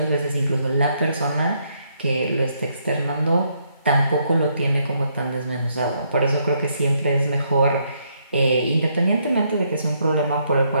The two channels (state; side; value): inverted; both; correlation -0.74